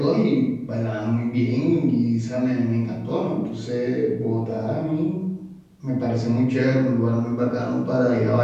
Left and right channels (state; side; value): identical; both; correlation 1.00